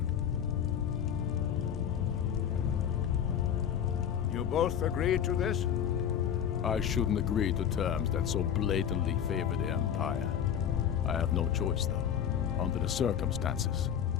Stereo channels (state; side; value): quieter; right; 8.9 dB